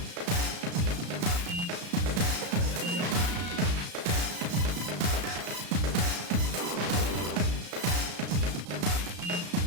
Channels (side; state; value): left; late; 34 ms